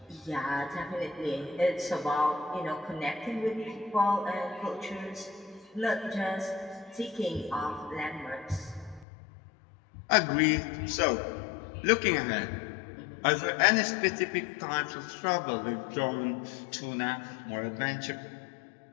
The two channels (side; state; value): right; drops out; at 9.1 s